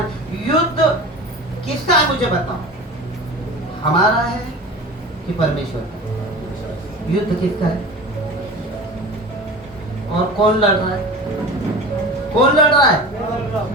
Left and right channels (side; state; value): both; normal; correlation 0.35